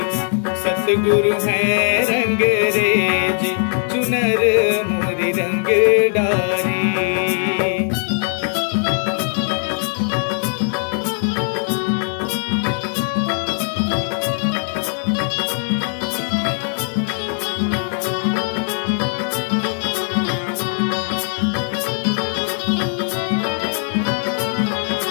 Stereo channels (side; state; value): right; silent; 57 dB below the other